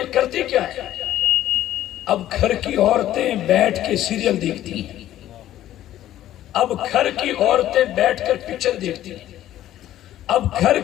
کرتی کیا ہیں, اب گھر کی عورتیں بیٹھ کے سیریل دیکھتی ہیں, اب گھر کی عورتیں بیٹھ کر پکچر دیکھتی ہیں, اب گھر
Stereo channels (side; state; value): right; quieter; 13.0 dB